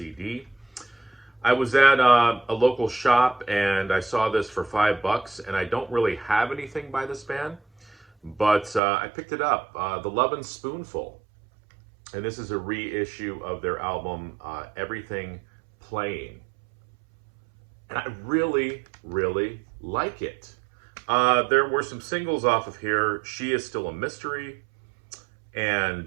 I was at a local shop and I saw this for $5, and I don't really have anything by this band, but I picked it up. The Lovin' Spoonful. And this is a reissue of their album, Everything Playing. And I really like it. There were some singles off of here. She Is Still a Mystery.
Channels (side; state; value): left; drops out; at 8.8 s